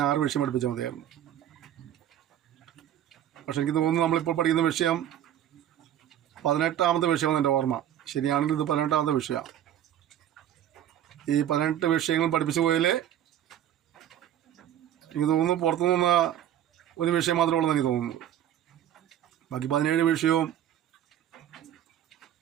6 വിഷയം പഠിപ്പിച്ചാൽ മതിയായിരുന്നു. പക്ഷെ എനിക്ക് തോന്നുന്നു നമ്മളിപ്പോൾ പഠിക്കുന്ന വിഷയം 18ാമത്തെ വിഷയമാണ് എൻ്റെ ഓർമ്മ. ശരിയാണെങ്കിൽ ഇത് 18ാമത്തെ വിഷയമാണ്. ഈ 18 വിഷയങ്ങൾ പഠിപ്പിച്ചു പോയാൽ എനിക്ക് തോന്നുന്നു പുറത്തുനിന്ന് ഒരു വിഷയം മാത്രമേ ഉള്ളൂ എനിക്ക് തോന്നുന്നു. ബാക്കി 17 വിഷയവും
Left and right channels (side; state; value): left; quieter; 10.9 dB